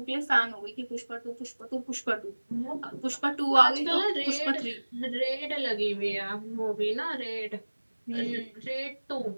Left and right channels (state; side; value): inverted; both; correlation -1.00